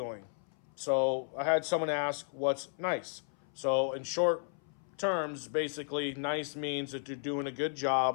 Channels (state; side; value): silent; right; 55 dB below the other